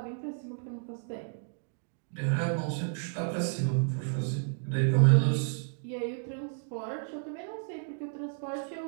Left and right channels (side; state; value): left; silent; digital silence